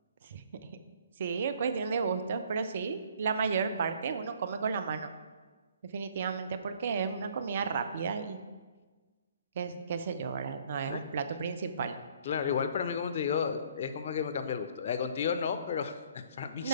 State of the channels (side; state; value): both; inverted; correlation -0.59